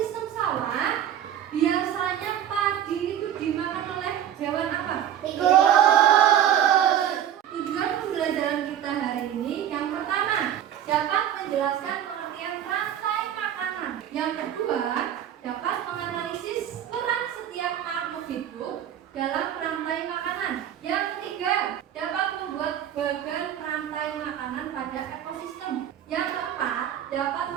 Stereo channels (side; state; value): left; quieter; 10.4 dB